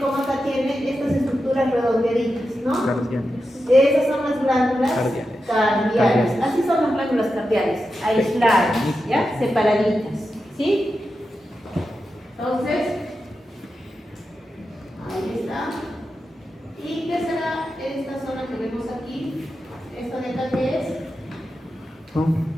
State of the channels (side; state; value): both; normal; correlation 0.90